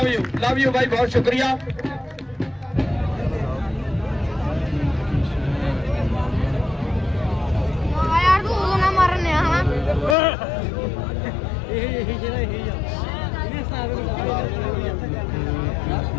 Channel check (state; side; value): drops out; right; at 10.2 s